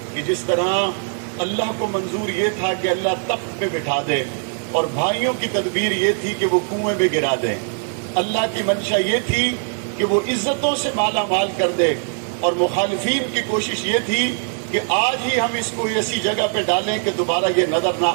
کہ جس طرح اللہ کو منظور یہ تھا کہ اللہ تخت پہ بٹھا دے، اور بھائیوں کی تدبیر یہ تھی کہ وہ کنویں میں گرا دیں، اللہ کی منشا یہ تھی کہ وہ عزتوں سے مالا مال کر دے، اور مخالفین کی کوشش یہ تھی کہ آج ہی ہم اس کو ایسی جگہ پہ ڈالیں کہ دوبارہ یہ نظر نہ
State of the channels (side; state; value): left; silent; 57 dB below the other